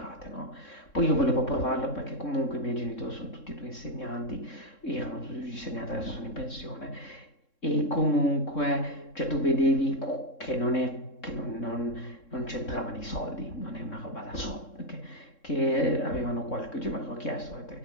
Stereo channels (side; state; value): right; late; 3.7 ms